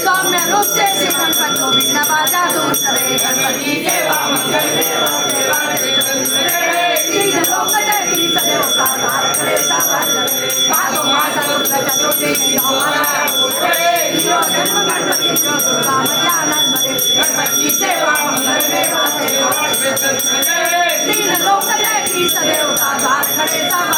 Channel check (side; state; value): both; identical; correlation 1.00